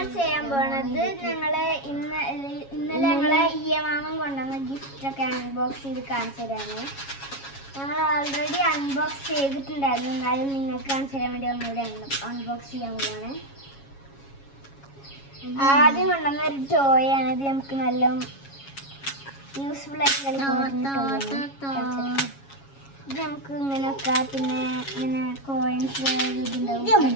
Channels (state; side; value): late; right; 7.3 ms